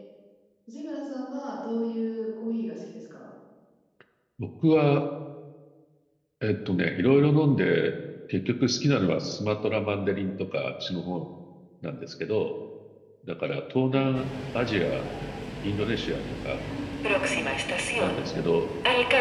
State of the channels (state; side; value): identical; both; correlation 1.00